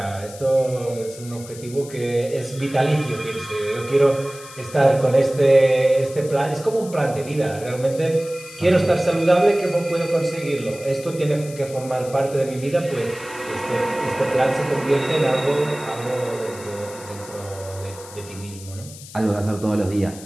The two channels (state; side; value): noise; left; hiss, 17 dB below the sound